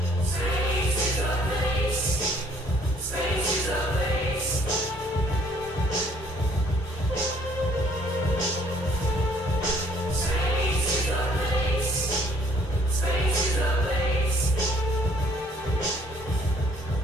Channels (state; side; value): normal; both; correlation 0.61